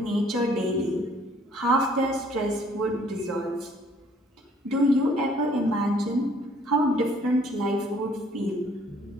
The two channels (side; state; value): both; normal; correlation 0.60